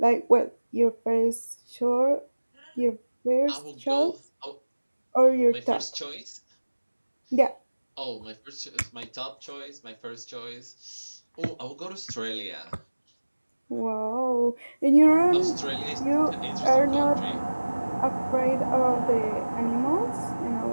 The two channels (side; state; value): both; inverted; correlation -1.00